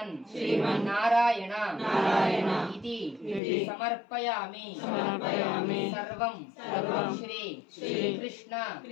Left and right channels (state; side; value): drops out; right; at 3.4 s